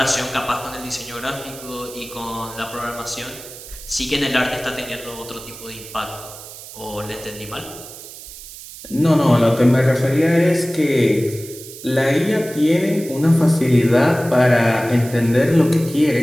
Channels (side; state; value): right; noise; hiss, 15 dB below the sound